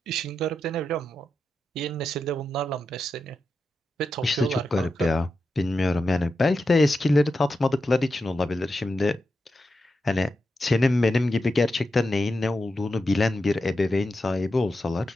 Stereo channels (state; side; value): normal; both; correlation 0.89